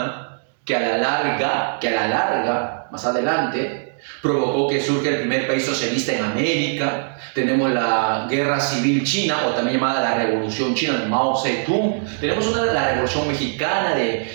que a la larga, más adelante, provocó que surja el primer país socialista en América. Tenemos la Guerra Civil China, o también llamada la Revolución China de Mao Zedong. Tenemos la Revolución Mexicana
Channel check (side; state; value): left; silent; digital silence